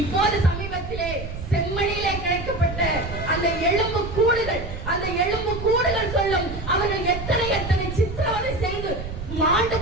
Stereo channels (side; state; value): right; noise; rumble, 8 dB below the sound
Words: சமீபத்திலே செம்மணியிலே கிடைக்கப்பட்ட அந்த எலும்பு கூடுகள் சொல்லும் அவர்கள் எத்தனை சித்திரவதை செய்து மாண்டு